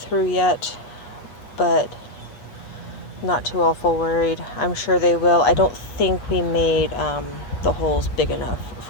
yet, but not too awful worried. I'm sure they will. I don't think we made the holes big enough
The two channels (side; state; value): right; late; 8.7 ms